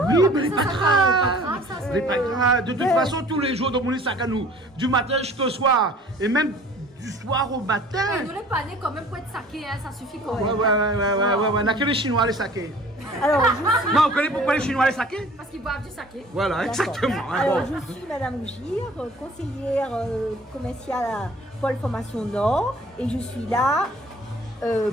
Oui, mais c'est pas grave. C'est pas grave. De toute façon, tous les jours, dans mon sac à nous, du matin jusqu'au soir, et même du soir au matin. Nous les panais quand même pour être saqués, hein, ça suffit quand même. Ouais. On a que les Chinois les saqués. Alors, non, on connaît pourquoi les Chinois les saqués? Parce qu'ils boivent du saké. Voilà, exactement. Alors, je suis Madame Gire, conseillère commerciale à Pôle Formation Nord, et je suis là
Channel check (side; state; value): both; normal; correlation 0.50